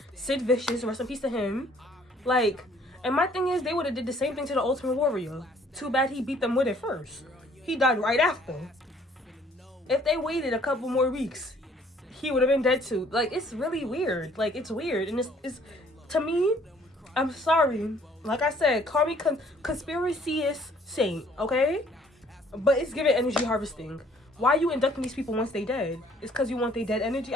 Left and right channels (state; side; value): normal; both; correlation 0.59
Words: Sid Vicious, rest in peace to him. Like, and my thing is, they would have did the same thing to the Ultimate Warrior. Too bad he beat them with it first. He died right after. If they waited a couple more weeks, he would have been dead too. Like, it's really weird. Like, it's weird. And it's to me, I'm sorry. Like I said, call me conspiracy-ist saint, okay? But it's giving energy harvesting. Why are you inducting these people once they dead? It's because you want their dead energy?